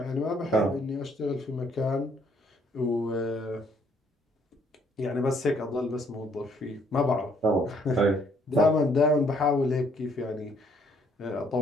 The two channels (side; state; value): both; normal; correlation 0.66